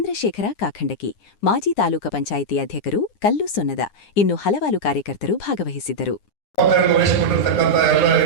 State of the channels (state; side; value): late; right; 9.8 ms